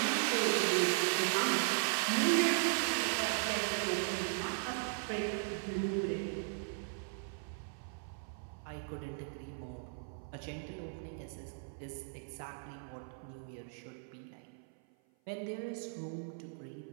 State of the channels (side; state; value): left; silent; 53 dB below the other